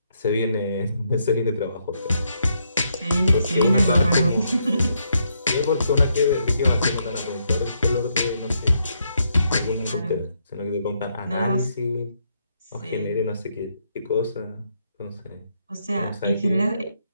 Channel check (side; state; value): both; inverted; correlation -0.77